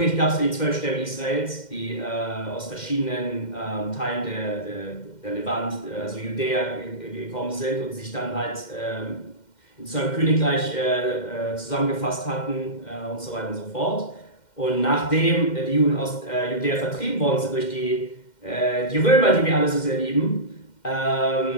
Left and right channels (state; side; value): late; right; 2.1 ms